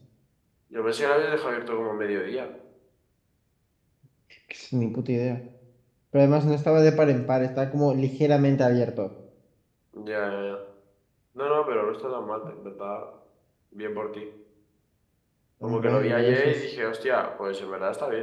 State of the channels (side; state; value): both; identical; correlation 1.00